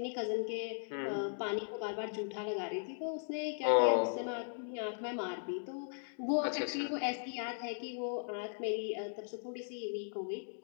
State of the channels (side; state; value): right; silent; digital silence